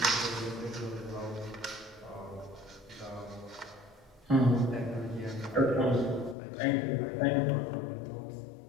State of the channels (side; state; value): right; drops out; at 6.4 s